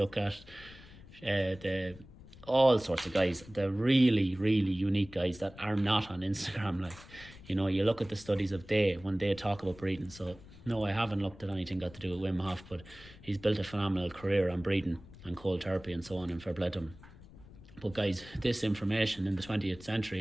at all sorts of guys, the really, really unique guys that are not on Instagram. Like, you look at the studies of when they talk about breathing. So no, I haven't looked at anything got to do with Wim Hof, but he's built a phenomenal career on breathing and cold therapy and so on, and fair play to him. But guys, this information in the 20th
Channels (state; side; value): noise; left; rumble, 19 dB below the sound